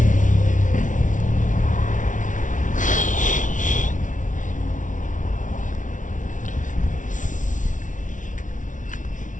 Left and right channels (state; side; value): late; right; 0.37 ms